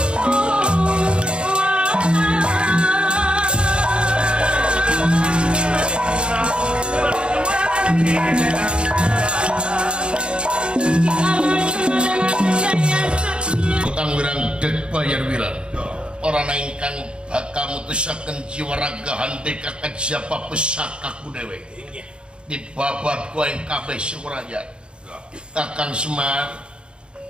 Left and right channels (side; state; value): left; late; 0.055 ms